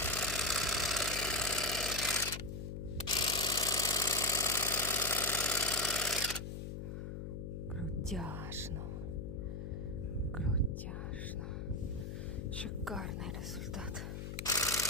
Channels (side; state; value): left; noise; hum, 6 dB below the sound